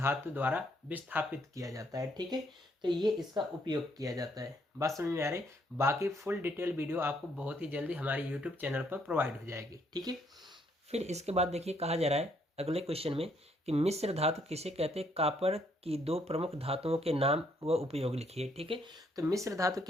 द्वारा विस्थापित किया जाता है। ठीक है, तो ये इसका उपयोग किया जाता है। बात समझ में आ रही। बाकी फुल डिटेल वीडियो आपको बहुत ही जल्दी हमारे यूट्यूब चैनल पर प्रोवाइड हो जाएगी। ठीक है, फिर इसके बाद देखिए कहा जा रहा है अगले क्वेश्चन में कि मिश्र धातु किसे कहते हैं, कॉपर की दो प्रमुख धातुओं के नाम व उपयोग लिखिए। ठीक है, तो मिश्र धातु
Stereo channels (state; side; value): normal; both; correlation 0.70